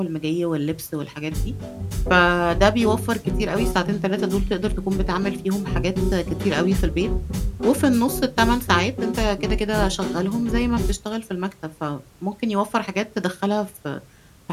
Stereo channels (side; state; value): both; identical; correlation 1.00